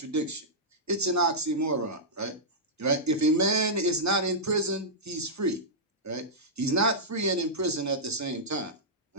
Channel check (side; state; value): both; normal; correlation -0.11